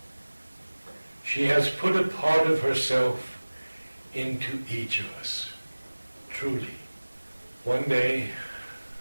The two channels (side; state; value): both; inverted; correlation -1.00